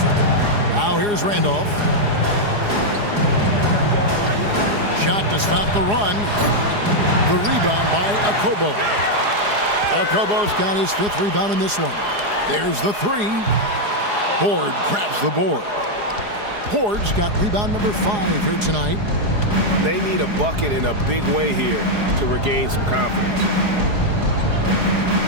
Now here's Randolph. Shot to stop the run. The rebound by Okobo. Okobo's got his 5th rebound in this one. There's the 3. Horde grabs the board. Horde's got rebound number 5 here tonight. They need a bucket in a big way here to regain some confidence.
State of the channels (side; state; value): left; late; 4.8 ms